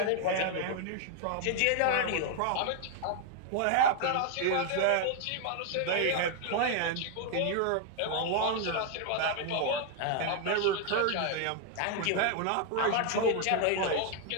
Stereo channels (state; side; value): different; both; correlation 0.00